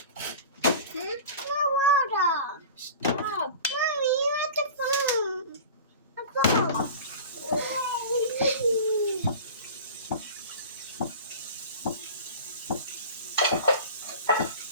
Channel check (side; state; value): both; inverted; correlation -0.37